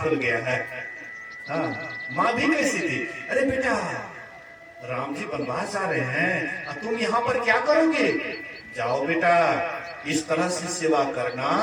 गया है। हाँ, माँ भी कैसी थी, अरे बेटा राम जी वनवास जा रहे हैं, तुम यहाँ पर क्या करोगे? जाओ बेटा, इस तरह से सेवा करना,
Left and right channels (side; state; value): both; identical; correlation 1.00